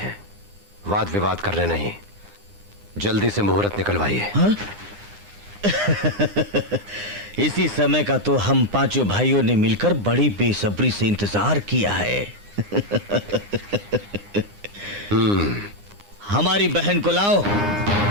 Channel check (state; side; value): late; left; 9.8 ms